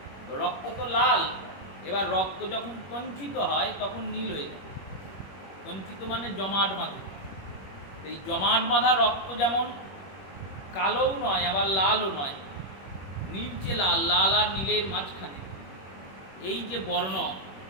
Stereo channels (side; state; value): right; late; 21 ms